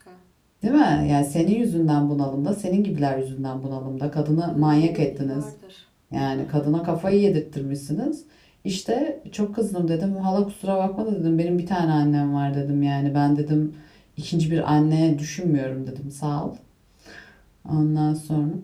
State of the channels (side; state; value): both; identical; correlation 1.00